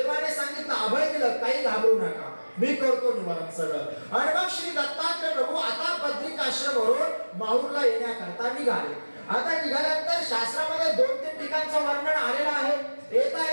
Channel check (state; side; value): inverted; both; correlation -1.00